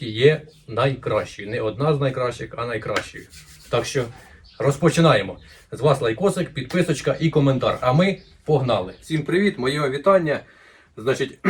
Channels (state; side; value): identical; both; correlation 1.00